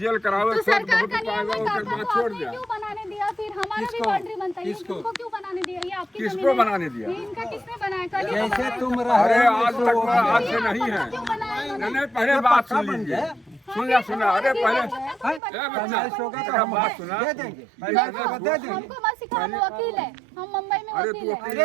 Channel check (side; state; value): left; drops out; at 15.4 s